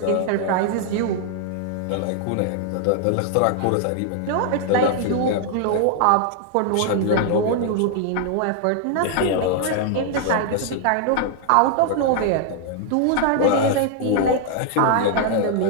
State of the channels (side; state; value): both; different; correlation 0.00